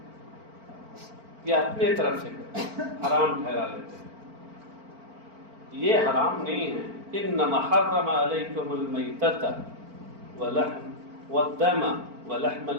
یا اپنے طرف سے حرام ٹھہرا لیتے ہیں۔ یہ حرام نہیں ہے۔ انما حرم علیکم المیتۃ والدم ولحم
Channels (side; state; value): left; late; 4.4 ms